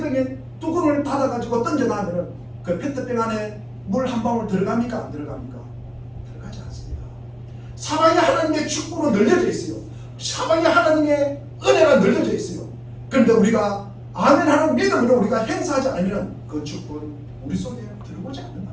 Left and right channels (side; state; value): both; identical; correlation 1.00